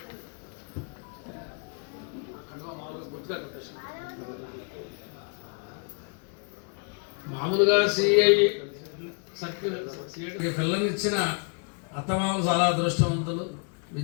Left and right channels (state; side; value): quieter; right; 38.3 dB